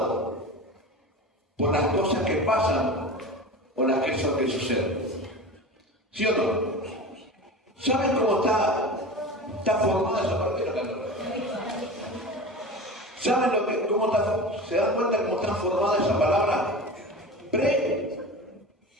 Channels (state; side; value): normal; both; correlation 0.31